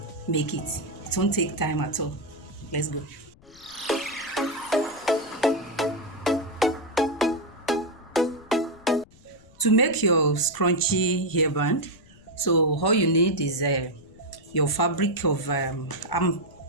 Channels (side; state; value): left; noise; rumble, 26 dB below the sound